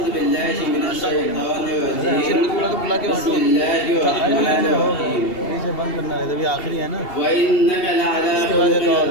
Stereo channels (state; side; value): late; right; 2.7 ms